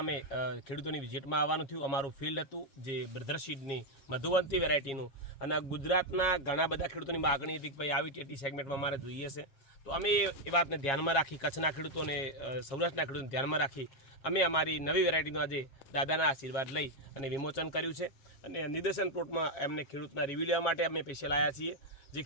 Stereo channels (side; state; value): right; late; 7.4 ms